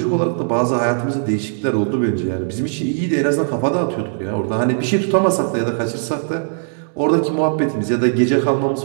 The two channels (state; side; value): silent; left; digital silence